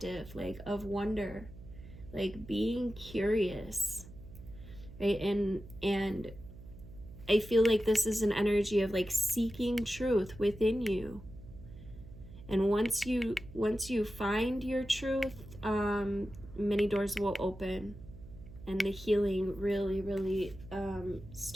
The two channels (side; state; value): right; noise; hum, 17 dB below the sound